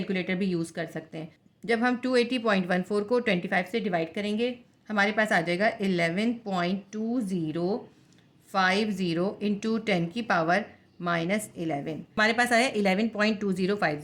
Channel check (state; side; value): identical; both; correlation 1.00